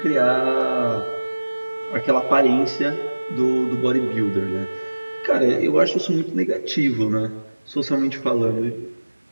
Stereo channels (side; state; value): both; inverted; correlation -1.00